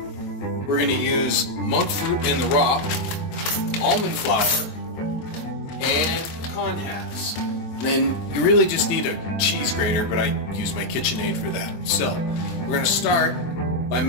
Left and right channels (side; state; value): right; late; 23 ms